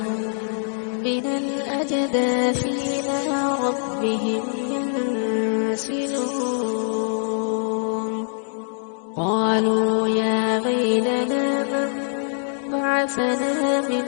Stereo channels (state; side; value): silent; right; digital silence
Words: من الأجداث إلى ربهم ينسلون قالوا يا ويلنا من بعثنا من